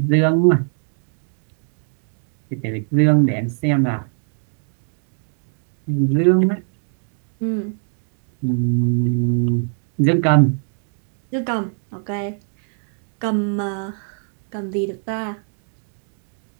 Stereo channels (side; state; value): left; silent; 64 dB below the other